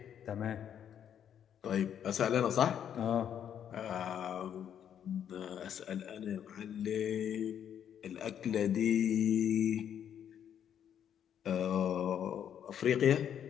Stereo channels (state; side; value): quieter; right; 9.2 dB